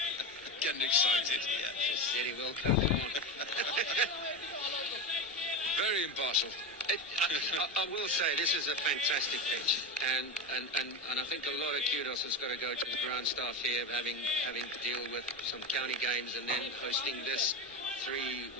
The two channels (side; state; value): both; normal; correlation 0.18